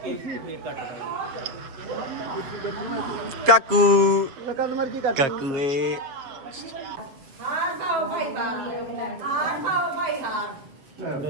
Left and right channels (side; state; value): left; late; 7.3 ms